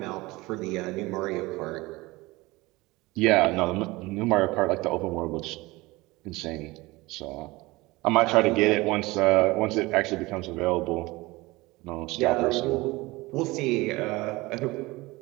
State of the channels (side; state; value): left; quieter; 21.5 dB